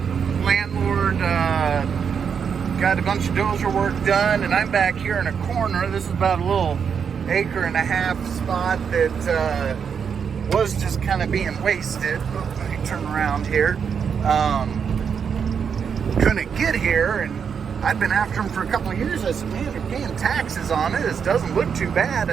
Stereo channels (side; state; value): left; quieter; 6.9 dB